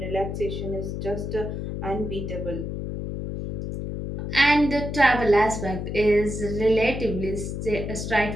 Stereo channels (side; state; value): left; noise; hum, 5 dB below the sound